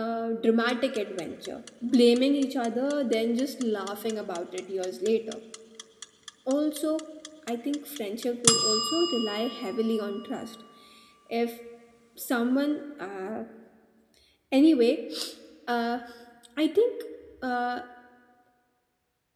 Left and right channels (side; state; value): both; identical; correlation 1.00